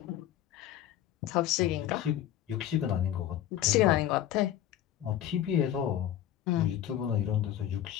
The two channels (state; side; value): quieter; right; 11.5 dB